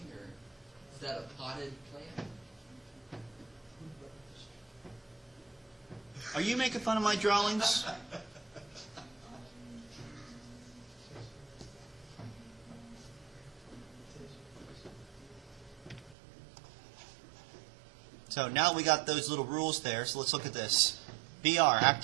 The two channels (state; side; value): drops out; left; at 16.2 s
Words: or is that a potted plant? Are you making fun of my drawings? So now we got those little rules there, so let's look at this. BR,